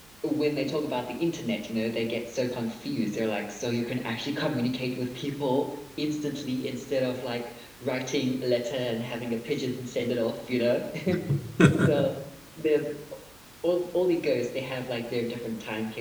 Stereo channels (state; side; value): noise; right; hum, 28 dB below the sound